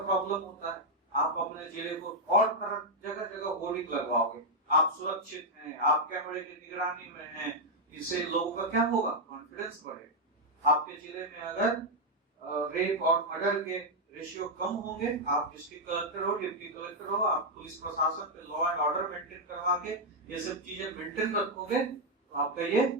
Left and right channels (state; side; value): normal; both; correlation -0.01